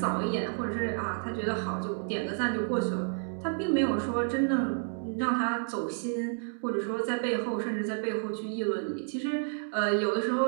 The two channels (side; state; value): left; silent; 58 dB below the other